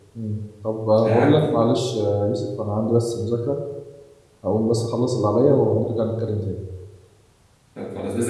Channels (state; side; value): identical; both; correlation 1.00